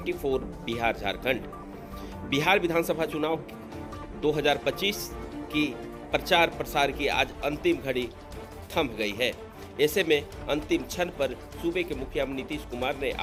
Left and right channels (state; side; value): identical; both; correlation 1.00